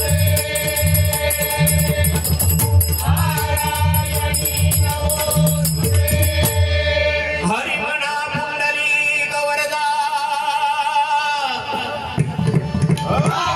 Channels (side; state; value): both; identical; correlation 1.00